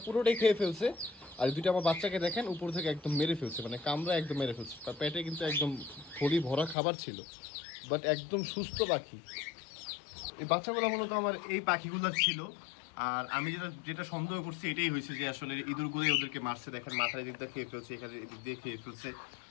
পুরোটাই খেয়ে ফেলছে। আর 2টা আমার বাচ্চাকে দেখেন উপর থেকে একদম মেরে ফেলছে, মানে কামড়া একদম মেরে ফেলছে। তার পেটে কিন্তু একদম থলি ভরা খাবার ছিল, বাট একদম সুস্থ পাখি। এই বাচ্চাগুলো মূলত আমার এই পাখিগুলো ছিল। আর আমি যেটা যেটা সন্দেহ করছি এটাই হয়েছে যে আসলে ইঁদুরগুলোই ওদেরকে মারছে। দেখেন মাথার দিক দিয়ে খেয়ে ফেলছে, এখানে এদিক দিয়ে খেয়ে ফেলছে।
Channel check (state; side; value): drops out; right; at 6.8 s